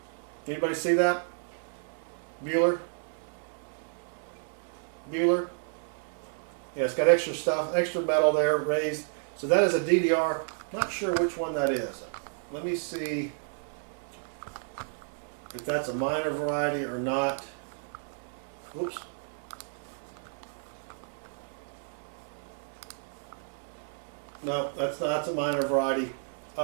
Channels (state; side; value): silent; left; 57 dB below the other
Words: Anybody see that? Bueller? Yeah, it's got extra stuff, extra metal there raised. So that is a DDR. Not sure which one that is. Let me see if that's a minor variety or not. Whoops. No, that's not. That's a minor variety,